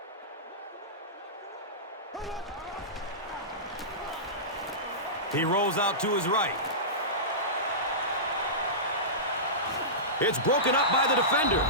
He rolls out to his right. It's broken up by the defender.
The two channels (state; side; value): normal; both; correlation -0.19